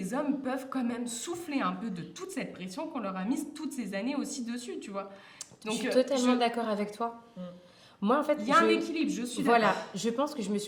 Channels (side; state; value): both; identical; correlation 1.00